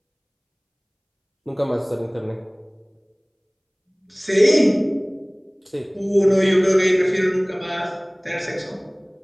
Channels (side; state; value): both; identical; correlation 1.00